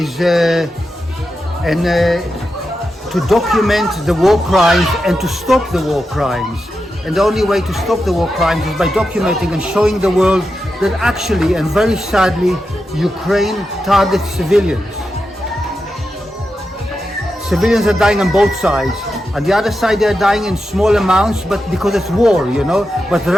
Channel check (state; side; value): normal; both; correlation 0.89